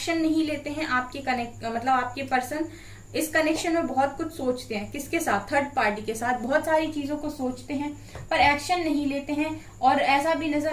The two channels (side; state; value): both; identical; correlation 1.00